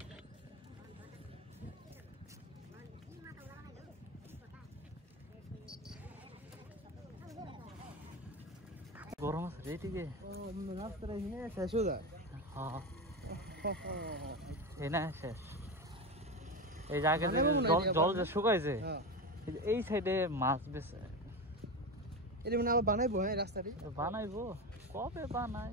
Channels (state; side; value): normal; both; correlation 0.20